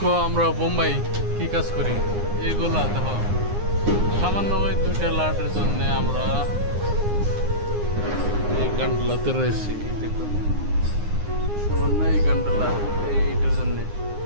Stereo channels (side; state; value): left; late; 9.7 ms